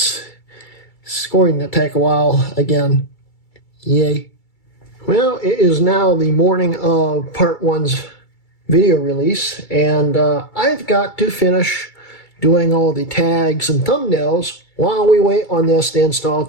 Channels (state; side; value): late; right; 2.3 ms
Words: going to take a while again. Yay. Well, it is now the morning of Part 1's video release, and I've got to finish doing all the tags and thumbnails while we wait on this to install